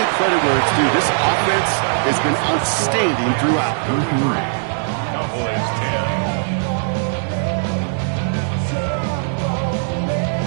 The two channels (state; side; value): silent; left; digital silence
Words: credit where it's due. This offense has been outstanding throughout. Cowboys